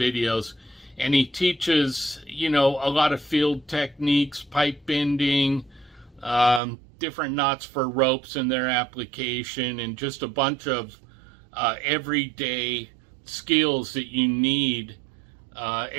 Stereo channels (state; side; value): drops out; left; at 6.6 s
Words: and he teaches, a lot of field techniques, pipe bending, different knots for ropes and their application, and just a bunch of everyday skills that you need.